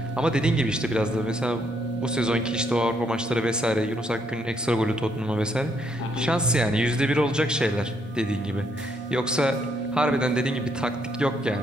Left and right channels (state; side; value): normal; both; correlation 0.73